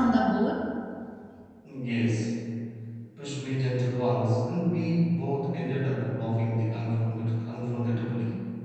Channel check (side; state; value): both; identical; correlation 1.00